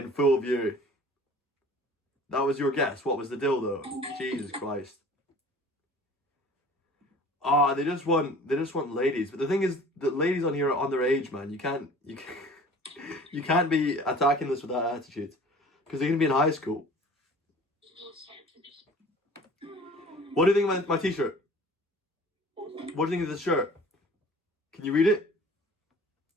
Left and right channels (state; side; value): normal; both; correlation 0.46